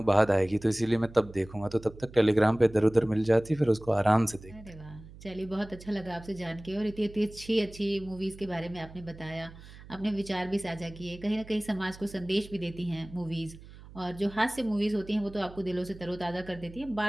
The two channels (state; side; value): noise; right; hum, 18 dB below the sound